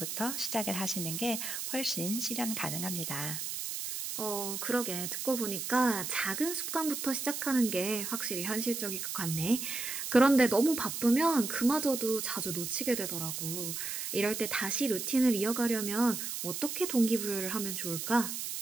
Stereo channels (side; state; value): right; noise; hiss, 4 dB below the sound